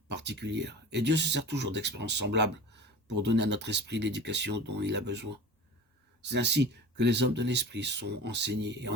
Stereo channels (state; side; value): normal; both; correlation 0.36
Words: particulières. Et Dieu se sert toujours d'expériences semblables pour donner à notre esprit l'éducation dont il a besoin. C'est ainsi que les hommes de l'esprit sont enseignés et